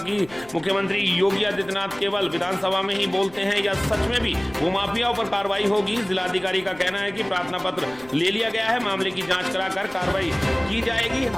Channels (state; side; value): noise; left; rumble, 23 dB below the sound